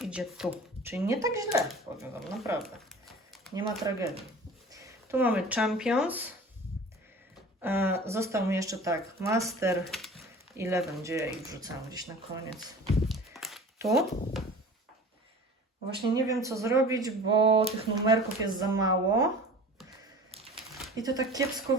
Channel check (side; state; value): both; normal; correlation 0.41